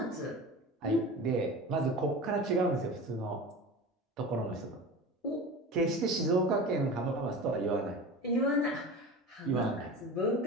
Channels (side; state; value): both; normal; correlation 0.32